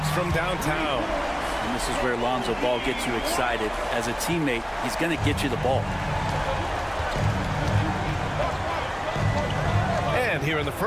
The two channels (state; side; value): identical; both; correlation 1.00